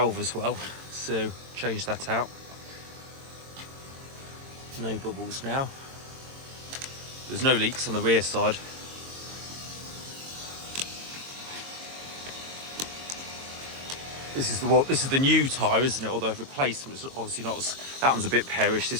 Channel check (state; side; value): late; left; 22 ms